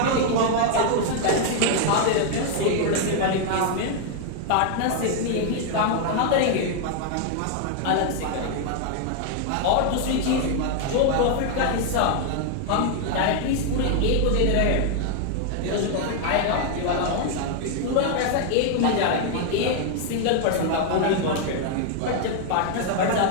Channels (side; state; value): both; different; correlation 0.00